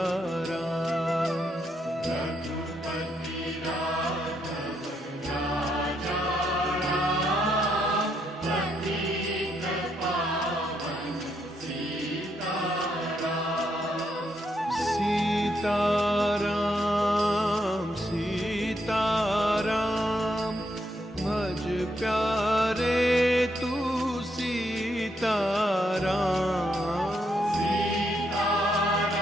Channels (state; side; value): normal; both; correlation 0.77